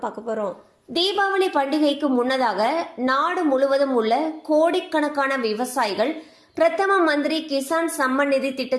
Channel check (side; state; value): both; identical; correlation 1.00